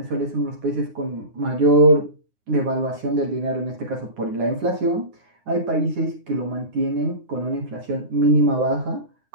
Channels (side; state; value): left; late; 9.7 ms